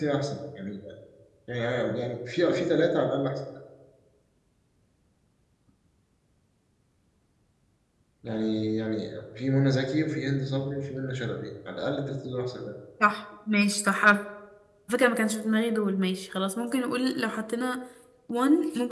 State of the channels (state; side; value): identical; both; correlation 1.00